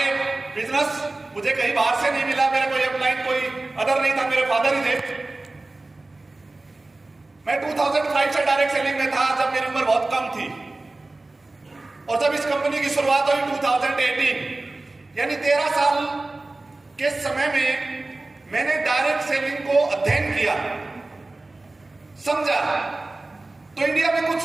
बिजनेस मुझे कहीं बाहर से नहीं मिला, मेरा कोई अपलाइन कोई अदर नहीं था, मेरे फादर ही थे। मैं 2005 से डायरेक्ट सेलिंग में था जब मेरी उम्र बहुत कम थी, और जब इस कंपनी की शुरुआत हुई 2018, यानी 13 साल के समय में मैंने डायरेक्ट सेलिंग को अध्ययन किया, समझा, तो इंडिया में कुछ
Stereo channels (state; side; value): quieter; left; 3.1 dB